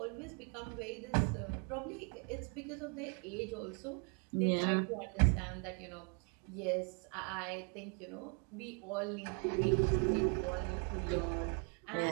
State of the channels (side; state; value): left; quieter; 37.5 dB